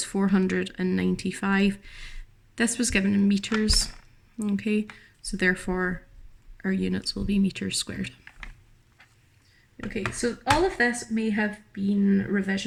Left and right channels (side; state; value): both; identical; correlation 1.00